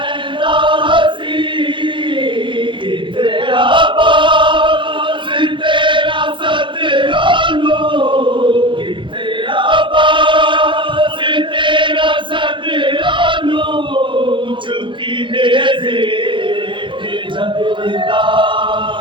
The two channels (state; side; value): late; left; 0.24 ms